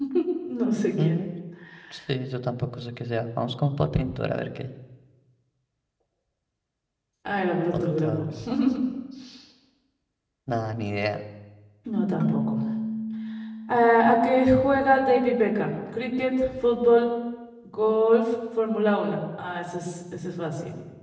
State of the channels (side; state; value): both; identical; correlation 1.00